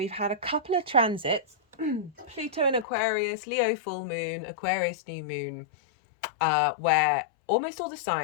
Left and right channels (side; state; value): right; drops out; at 2.9 s